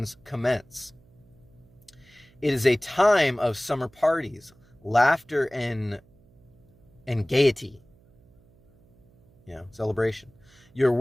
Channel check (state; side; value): noise; right; hum, 30 dB below the sound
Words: commence. It is a time of summer parties, laughter and gaiety, celebration. Your